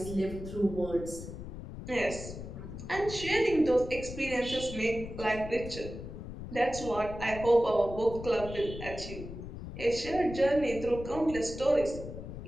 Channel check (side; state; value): left; noise; rumble, 10 dB below the sound